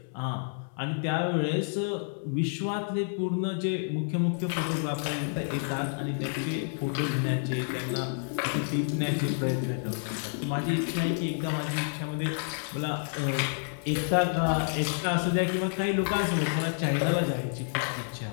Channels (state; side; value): silent; right; digital silence